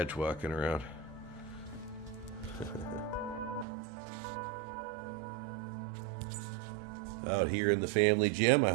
walking around. Out here in the family gym. I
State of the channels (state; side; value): drops out; left; at 3.7 s